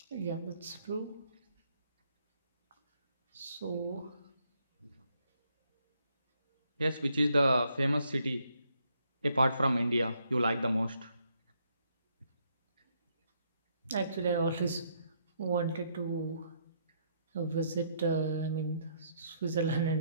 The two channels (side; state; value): both; inverted; correlation -0.72